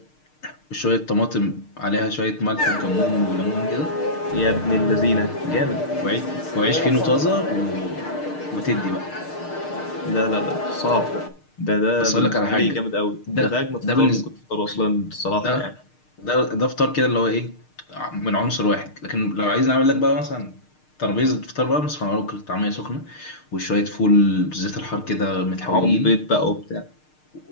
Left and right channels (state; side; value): late; right; 6.6 ms